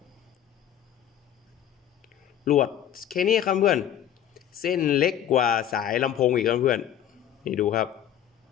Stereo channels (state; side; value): quieter; right; 10.4 dB